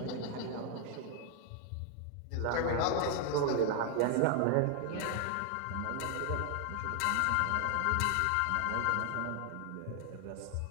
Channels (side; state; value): both; different; correlation 0.00